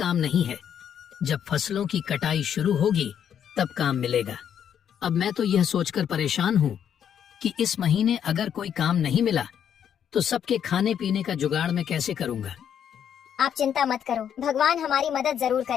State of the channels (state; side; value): quieter; right; 8.8 dB